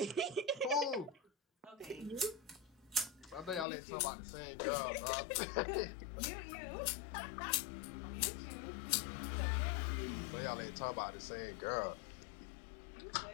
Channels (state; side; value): drops out; right; at 3.7 s